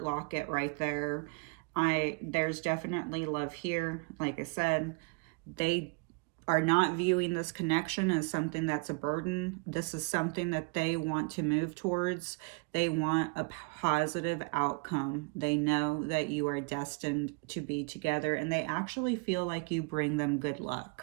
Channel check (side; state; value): left; quieter; 32.3 dB